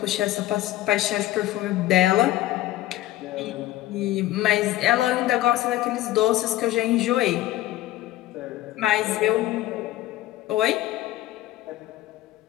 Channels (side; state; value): right; quieter; 15.4 dB